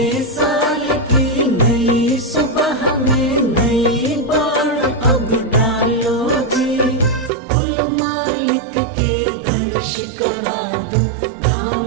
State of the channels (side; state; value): left; drops out; at 7.3 s